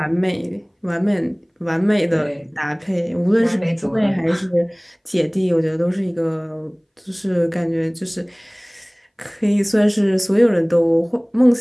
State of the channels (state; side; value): identical; both; correlation 1.00